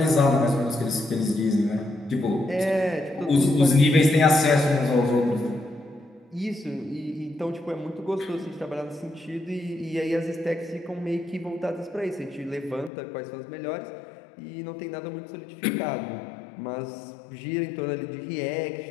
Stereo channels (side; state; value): right; drops out; at 12.9 s